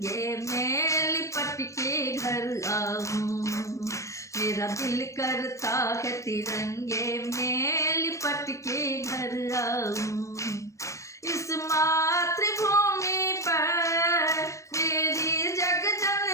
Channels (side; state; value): right; late; 0.15 ms